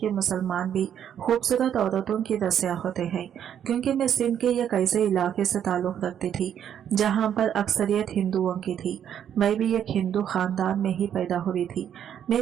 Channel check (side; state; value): left; quieter; 9.4 dB